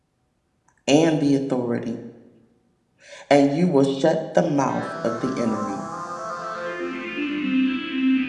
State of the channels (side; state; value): both; identical; correlation 1.00